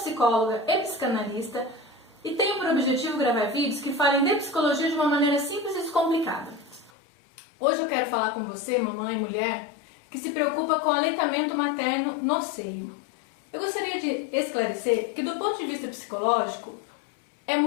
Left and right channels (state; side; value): drops out; right; at 6.9 s